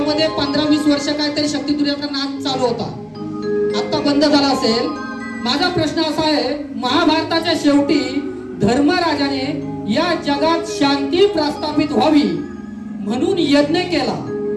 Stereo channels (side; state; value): both; identical; correlation 1.00